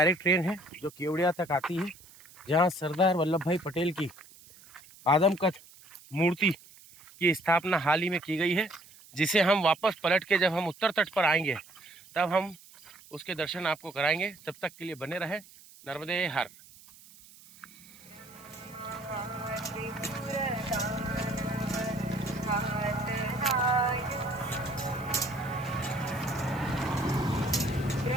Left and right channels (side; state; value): right; noise; hiss, 22 dB below the sound